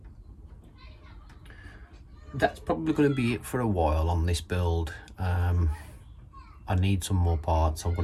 That's probably going to be it for a while on this build. I need some more parts.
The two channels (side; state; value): both; identical; correlation 1.00